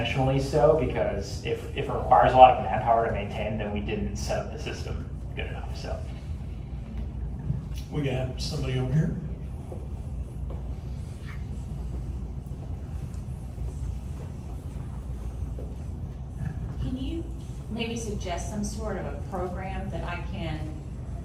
so, because if it requires a lot of manpower to maintain, then we didn't set up the system good enough, so. We got somebody over here. Can you maybe suggest some sort of a program that I can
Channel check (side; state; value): both; identical; correlation 1.00